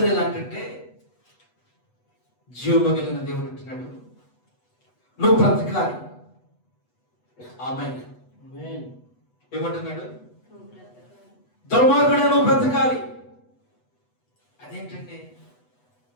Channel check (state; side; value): late; right; 8.1 ms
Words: ఎలా అంటే జీవము కలిగిన దేవుడు అంటున్నాడు, నువ్వు బ్రతకాలి. ఆమేన్. ఏమంటున్నాడు? దుర్మార్గుడు నువ్వు బ్రతకాలి. అదేంటండి?